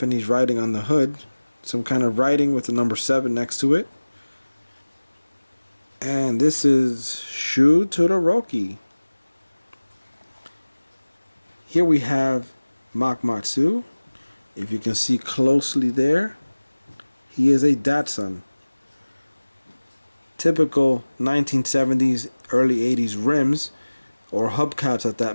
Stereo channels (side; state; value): both; inverted; correlation -1.00